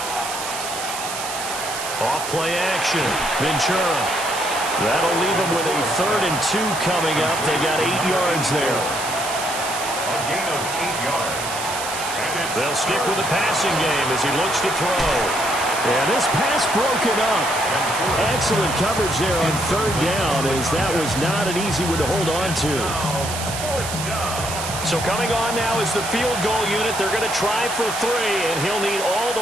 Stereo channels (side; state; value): right; noise; hiss, 6 dB below the sound